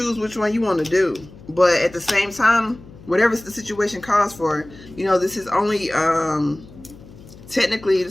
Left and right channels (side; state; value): left; noise; hum, 20 dB below the sound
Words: which one you want to do. But at the same time, whatever the situation calls for, you know, this is only, technically,